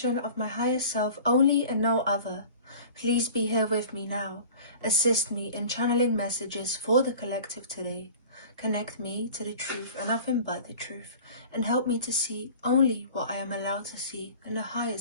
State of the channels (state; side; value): inverted; both; correlation -0.42